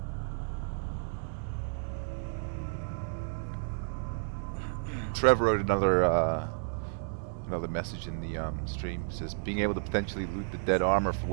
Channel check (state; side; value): silent; left; digital silence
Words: Trevor wrote another message in the stream. It says, being able to potentially loot the dead armor for